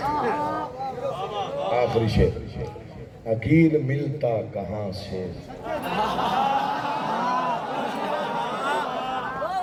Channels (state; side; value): identical; both; correlation 1.00